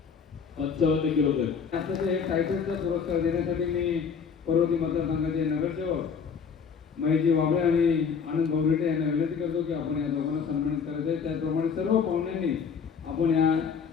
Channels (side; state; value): right; quieter; 6.3 dB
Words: 55 किलो गट आताचं हे टायटलचा पुरस्कार देण्यासाठी मी पर्वती मतदारसंघाचे नगरसेवक महेशजी वाबळे आणि आनंद भाऊरेटे यांना विनंती करतो की आपण या दोघांना सन्मानित करायचं आहे. त्याचप्रमाणे सर्व पाहुण्यांनी आपण या